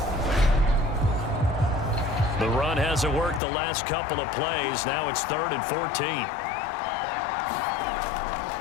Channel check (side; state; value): right; drops out; at 3.4 s